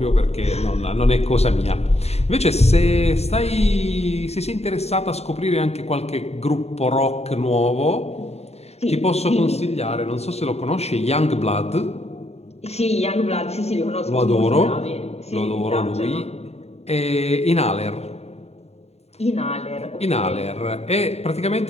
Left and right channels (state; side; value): late; right; 0.31 ms